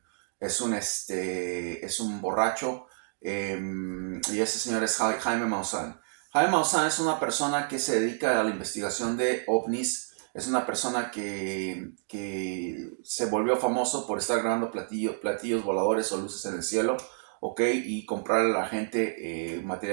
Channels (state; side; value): silent; left; digital silence